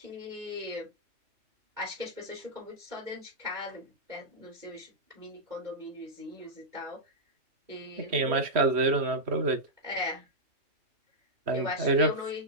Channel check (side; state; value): left; late; 3.1 ms